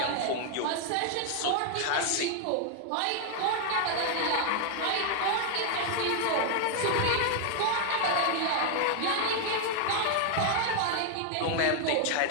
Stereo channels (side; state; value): both; different; correlation 0.00